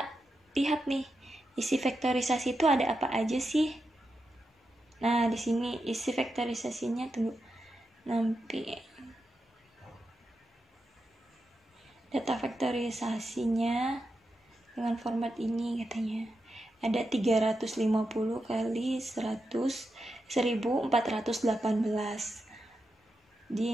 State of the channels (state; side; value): normal; both; correlation 0.87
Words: lihat nih isi vektorisasi itu ada apa aja sih. Nah, di sini isi vektorisasinya, tunggu, nanti data vektorisasinya dengan format ini katanya ada 350 kali 1418